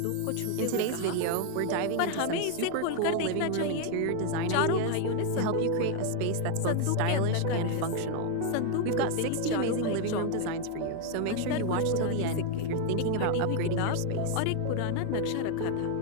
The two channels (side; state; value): both; different; correlation 0.00